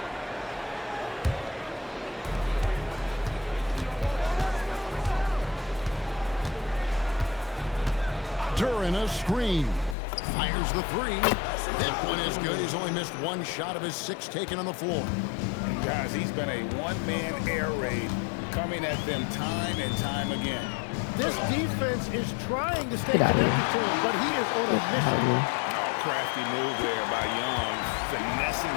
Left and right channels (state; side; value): drops out; right; at 10.0 s